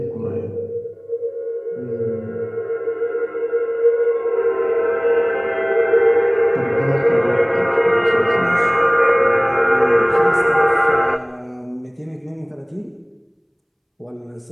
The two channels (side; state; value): both; identical; correlation 1.00